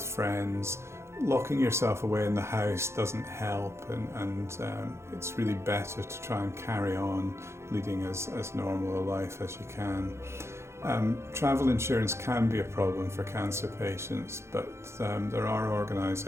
friends. Locking yourself away in the house doesn't help, and it's really better to try and carry on leading as normal a life as you can. Travel insurance can be a problem for cancer patients, but there are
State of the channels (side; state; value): left; late; 0.13 ms